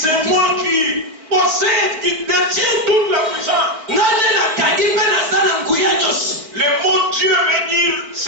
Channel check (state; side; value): late; left; 4.4 ms